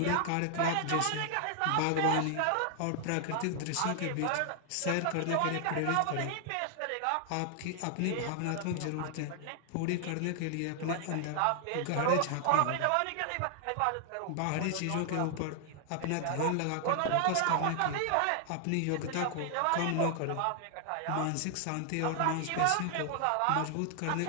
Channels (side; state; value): both; different; correlation 0.00